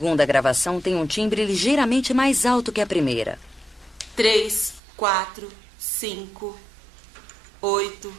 gravação tem um timbre ligeiramente mais alto que a primeira. 3, 4, 5, 8,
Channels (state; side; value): drops out; left; at 4.8 s